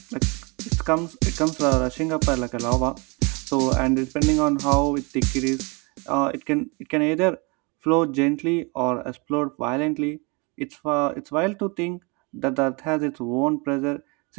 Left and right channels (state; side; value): quieter; left; 29.5 dB